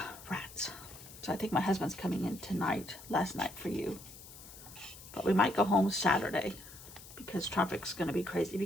Rats. So I think my husband's coming in tonight, last night for you. But we might go home Saturday because traffic's going to be crazy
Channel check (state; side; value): noise; left; hiss, 17 dB below the sound